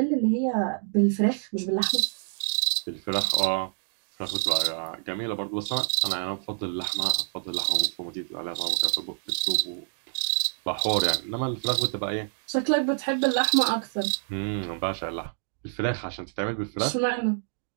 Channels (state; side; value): silent; left; digital silence